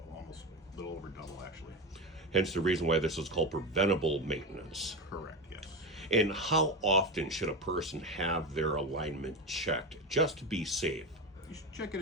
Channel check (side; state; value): both; normal; correlation 0.19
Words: almost a little over double, actually. Hence the reason why this is called preventable maintenance. Correct, yes. And how often should a person have their alignment checked just to be safe? You should check it